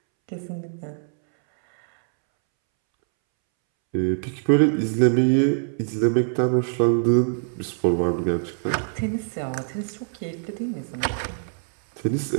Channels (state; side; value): silent; left; 63 dB below the other